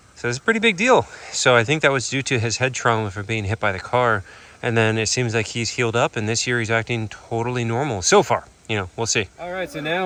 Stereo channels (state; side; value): identical; both; correlation 1.00